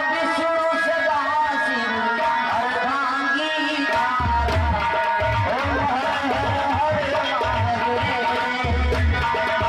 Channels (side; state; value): both; identical; correlation 1.00